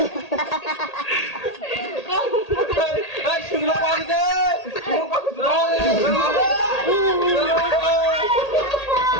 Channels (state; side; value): late; right; 1.8 ms